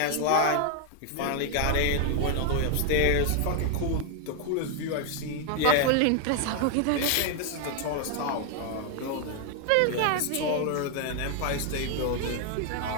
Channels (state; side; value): different; both; correlation 0.00